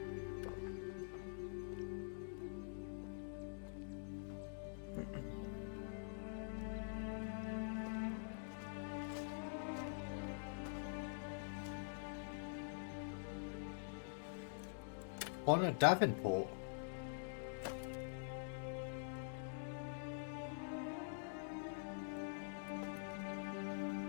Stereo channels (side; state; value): right; silent; digital silence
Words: On a Davenport.